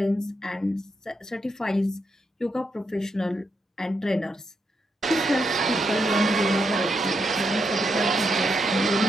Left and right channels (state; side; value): normal; both; correlation 0.81